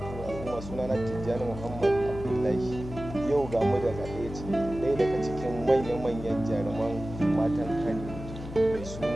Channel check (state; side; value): noise; left; hum, 10 dB below the sound